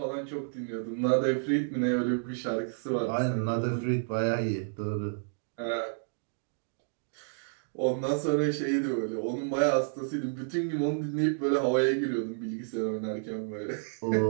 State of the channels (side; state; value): left; silent; digital silence